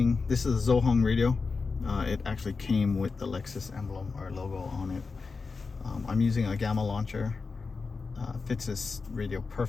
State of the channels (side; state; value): right; quieter; 4.5 dB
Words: this is a Zohong radio. It actually came with the Lexus emblem or logo on it. I'm using a Gamma launcher. Fits this radio